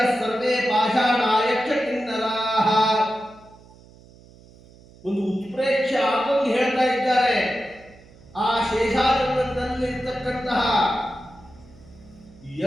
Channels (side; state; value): right; noise; hum, 24 dB below the sound